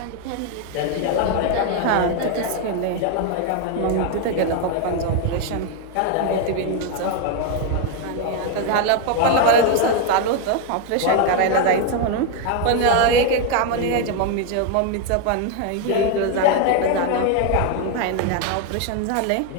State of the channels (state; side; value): different; both; correlation 0.01